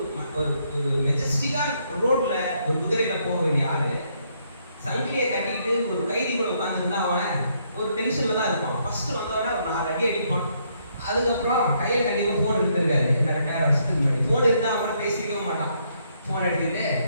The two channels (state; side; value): inverted; both; correlation -0.72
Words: ஒரு மெஜஸ்டிக்கா ரோட்ல ஒரு குதிரையில போக வேண்டிய ஆளு சங்கிலியை கட்டிக்கிட்டு ஒரு கைதி கூட உட்காந்துருந்தா அவன் ஒரு டென்ஷன்ல தான் இருப்பான். ஃபர்ஸ்ட் வந்தவன ஒரு 4 அடி அடிப்பான். அதுக்கப்புறம் கையில கண்டிப்பா போன் இருந்திருக்காரு. என்ன 2000 வருஷத்துக்கு முன்னாடி போன் இருந்தா அவனை பேசிக்கவே மாட்டான். போன் எடுத்துட்டு